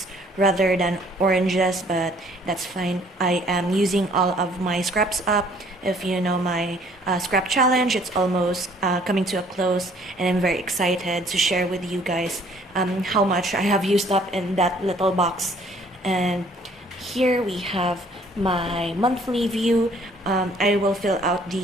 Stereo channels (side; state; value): both; normal; correlation 0.59